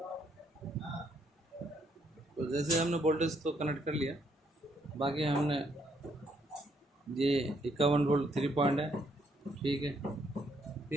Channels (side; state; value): both; normal; correlation 0.71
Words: तो जैसे हमने वोल्टेज तो कनेक्ट कर लिया, बाकी हमने ये 51 वोल्ट 3 पॉइंट है, ठीक है।